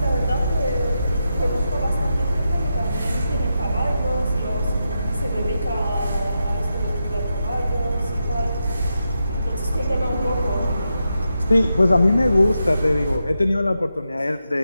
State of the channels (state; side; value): inverted; both; correlation -0.87